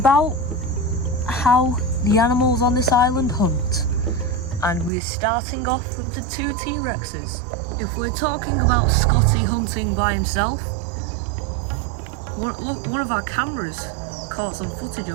how the animals on this island hunt, and we're starting off with the 2 T-Rexes. If we're talking about Scotty hunting by himself, one of our cameras caught some footage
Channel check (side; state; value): left; drops out; at 4.9 s